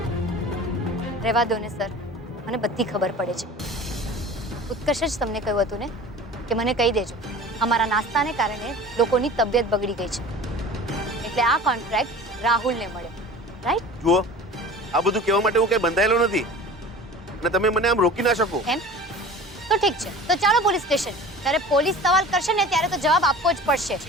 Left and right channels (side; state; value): both; normal; correlation 0.40